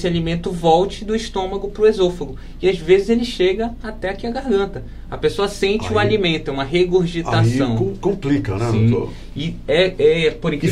alimento volte do estômago para o esôfago. E às vezes ele chega até aqui a garganta. A pessoa sente o alimento, é uma regurgitação. Aí complica, né, Sim. doutor? E por E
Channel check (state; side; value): identical; both; correlation 1.00